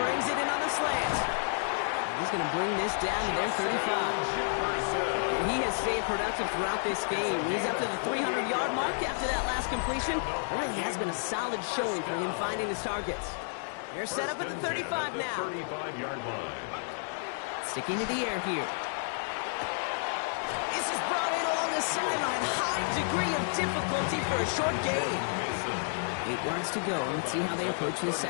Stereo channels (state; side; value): silent; right; 57 dB below the other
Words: it in on the slant. He's going to bring this down to their 35. And he has stayed productive throughout this game. He's up to the 300-yard mark after that last completion. It really has been a solid showing for him finding his targets. They're set up at the 35 now. 35-yard line. Sticking to the air here. This is brought in along the sideline. High degree of difficulty for a short gain. 8 yards to go. Let's see how they approach the